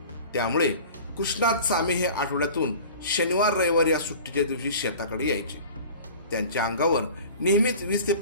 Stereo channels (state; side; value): inverted; both; correlation -0.41